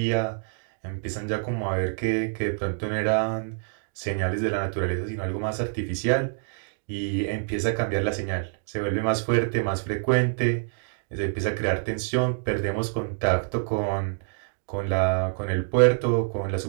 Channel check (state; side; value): silent; left; digital silence